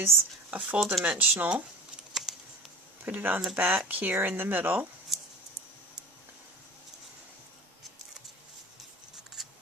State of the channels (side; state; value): both; normal; correlation 0.36